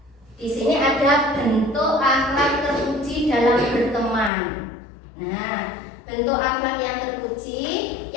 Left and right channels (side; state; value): right; drops out; at 4.3 s